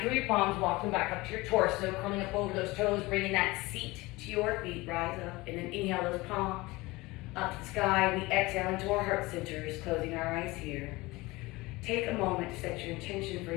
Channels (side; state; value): right; quieter; 21.5 dB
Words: through your palms, walk them back up to your torso, curling up over those toes, bringing that seat to your feet, rise up, and then inhale those palms up to the sky. We exhale into our heart centers, closing our eyes here. Take a moment to set your intention for